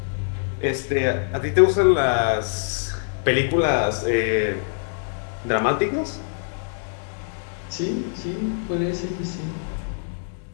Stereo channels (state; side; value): silent; right; digital silence